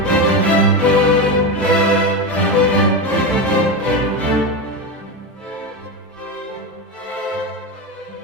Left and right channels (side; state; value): both; normal; correlation 0.16